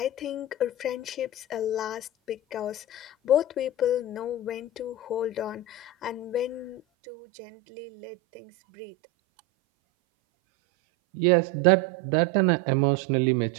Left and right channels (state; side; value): drops out; left; at 6.8 s